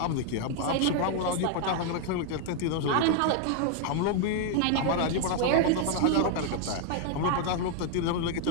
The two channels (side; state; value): both; different; correlation 0.00